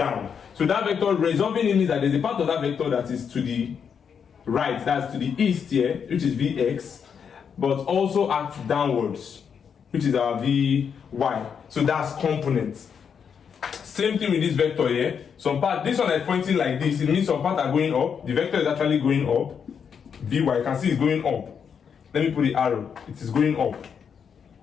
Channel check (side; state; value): right; quieter; 7.0 dB